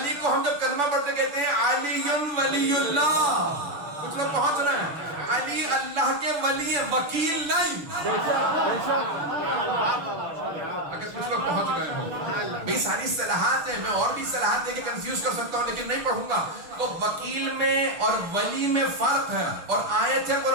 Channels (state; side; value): late; left; 6.9 ms